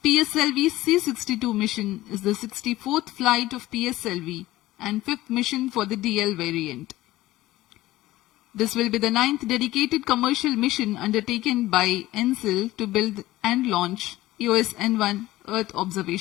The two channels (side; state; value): right; quieter; 16.8 dB